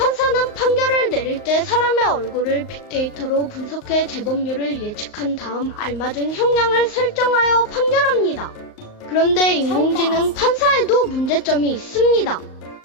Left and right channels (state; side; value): late; right; 28 ms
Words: 판결을 내릴 때 사람의 얼굴을 빅데이터로 분석해 재범률을 예측한 다음 알맞은 형량을 설정하여 판결합니다. 그런데 인공지능 판사에도 문제점이 있습니다.